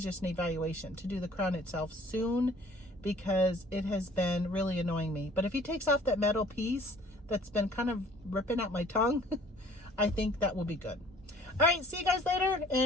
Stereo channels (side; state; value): both; normal; correlation 0.54